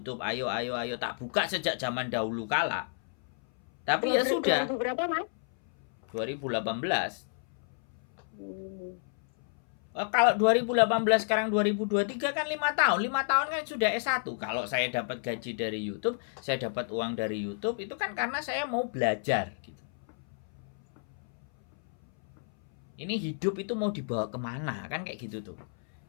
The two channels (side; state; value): right; silent; 57 dB below the other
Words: ayo, tak buka sejak zaman dahulu kala. Tapi ya sudah. Berapa Mas? 2018. Kalau 2018 sekarang 2023 kan 5 tahun. 5 tahun kan sudah S1. Kalau saya dapat gaji dari YouTube, saya dapat uang dari YouTube, itu kan karena saya mau belajar gitu. Ini hidup itu mau dibawa kemana kan kayak gitu tuh.